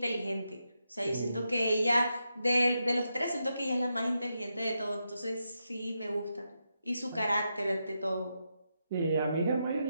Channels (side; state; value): both; inverted; correlation -0.85